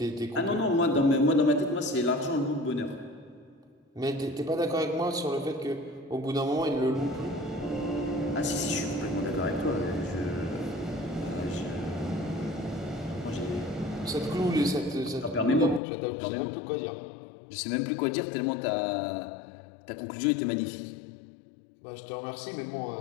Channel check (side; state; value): right; drops out; at 15.8 s